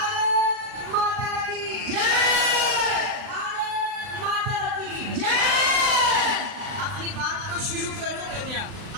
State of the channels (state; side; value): late; left; 39 ms